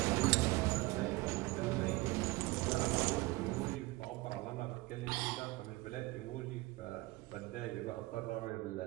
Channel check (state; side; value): quieter; left; 21.2 dB